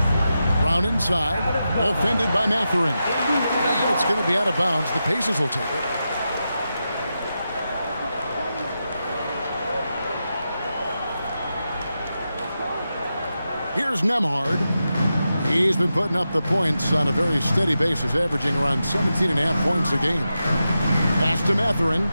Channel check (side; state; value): both; inverted; correlation -0.89